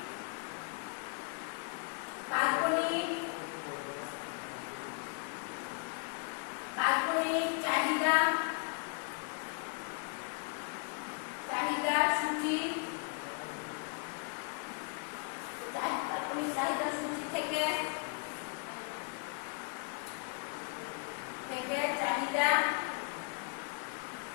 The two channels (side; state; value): right; quieter; 35.4 dB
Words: কাল্পনিক চাহিদা সূচি থেকে চাহিদা